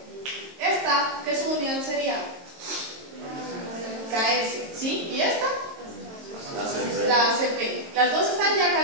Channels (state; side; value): late; left; 22 ms